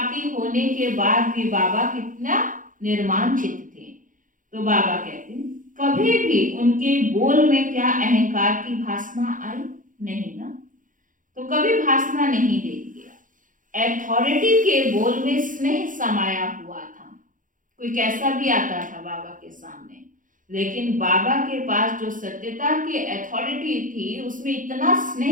होने के बाद भी बाबा कितना निर्माण चित्त थे। तो बाबा कहते हैं कभी भी उनके बोल में क्या अहंकार की भासना आई? नहीं ना, तो कभी भासना नहीं देंगे। अथॉरिटी के बोल में स्नेह समाया हुआ था। कोई कैसा भी आता था बाबा के सामने, लेकिन बाबा के पास जो सत्यता की अथॉरिटी थी उसमें इतना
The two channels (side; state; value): left; late; 0.38 ms